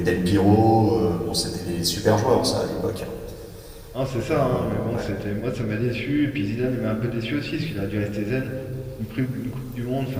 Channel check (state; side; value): identical; both; correlation 1.00